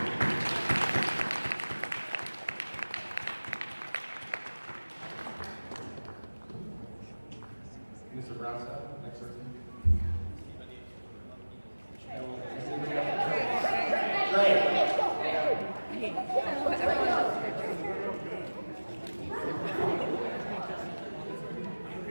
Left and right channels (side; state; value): both; inverted; correlation -1.00